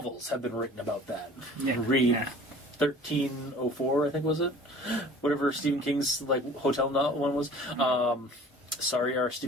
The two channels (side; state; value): both; normal; correlation 0.46